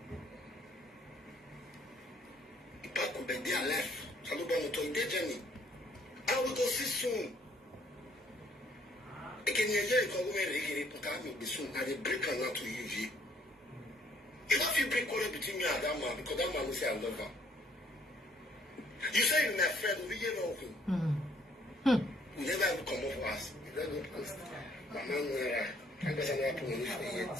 If I could be there left, so I'm going to their journey. I will go see soon. I can hear you come over put out me soon. I will break her now to you. If you break quarrel between me and that man, because that man will say I love her. You say you're my friend, we get over. We never have to come up for us. You don't know because my man I guess I'm not putting it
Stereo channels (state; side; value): normal; both; correlation 0.64